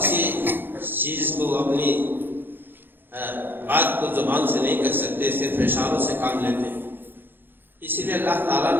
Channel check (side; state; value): left; late; 0.098 ms